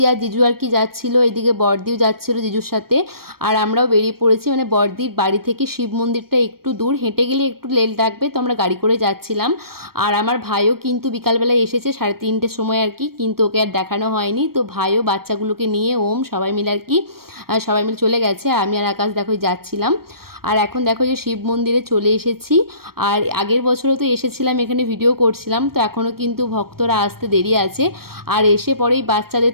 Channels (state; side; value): late; left; 0.94 ms